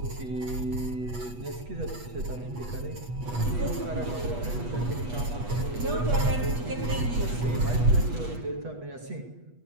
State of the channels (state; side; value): late; left; 8.2 ms